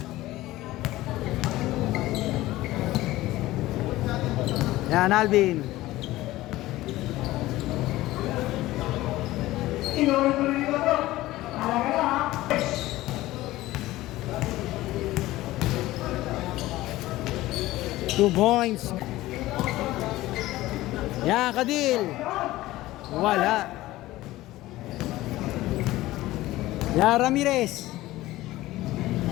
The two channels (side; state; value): right; quieter; 17.0 dB